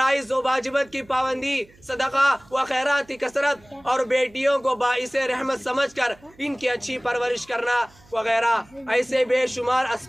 و واجبات کی پابندی، صدقہ و خیرات کی کثرت اور بیٹیوں کو باعث رحمت سمجھ کر ان کی اچھی پرورش کرنا وغیرہ، ایسے بے شمار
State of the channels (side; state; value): right; noise; hum, 28 dB below the sound